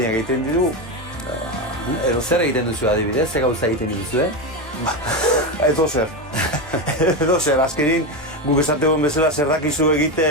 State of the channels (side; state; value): both; normal; correlation 0.14